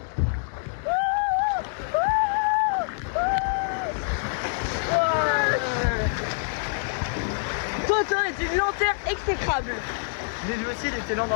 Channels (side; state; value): right; silent; digital silence